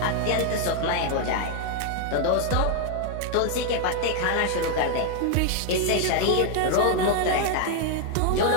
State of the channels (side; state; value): both; different; correlation 0.00